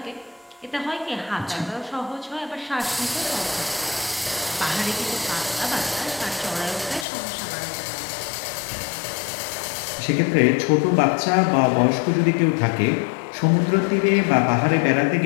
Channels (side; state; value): right; drops out; at 7.1 s